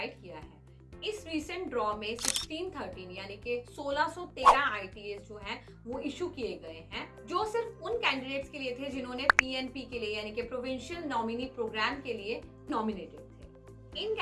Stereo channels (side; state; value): both; identical; correlation 1.00